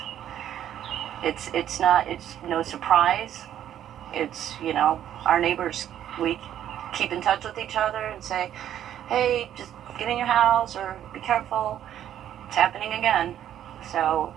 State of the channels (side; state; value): left; quieter; 10.9 dB